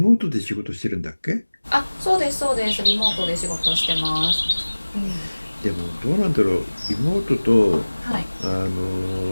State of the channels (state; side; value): inverted; both; correlation -1.00